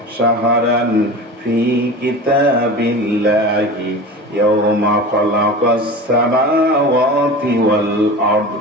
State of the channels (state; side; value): normal; both; correlation 0.32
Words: শাহরান ফি কিতাবিল্লাহি ইয়াওমা খালাকাস সামাওয়াতি ওয়াল আরদ